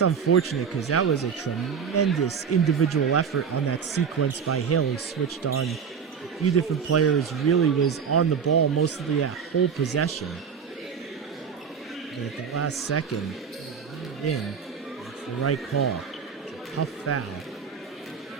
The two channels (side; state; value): left; quieter; 6.7 dB